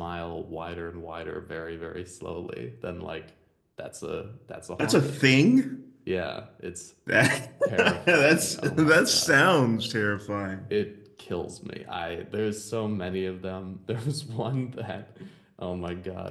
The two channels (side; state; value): both; identical; correlation 1.00